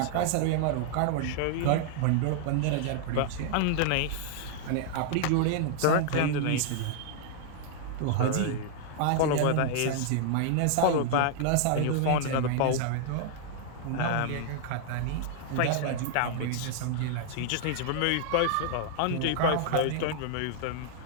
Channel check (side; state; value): both; different; correlation -0.01